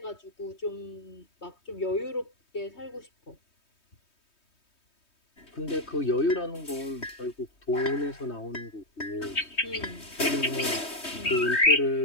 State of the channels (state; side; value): late; right; 3.2 ms